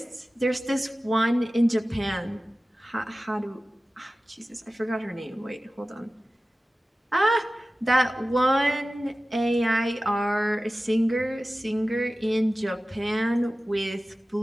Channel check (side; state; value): both; normal; correlation 0.96